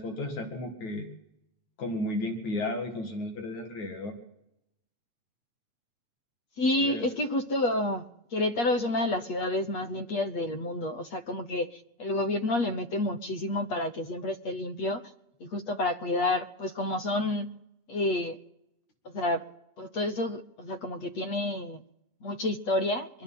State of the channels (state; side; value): late; right; 8.4 ms